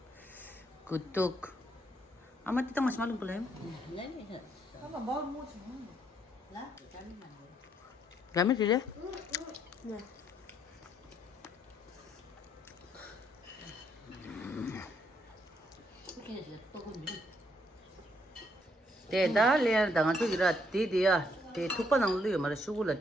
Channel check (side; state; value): both; normal; correlation 0.72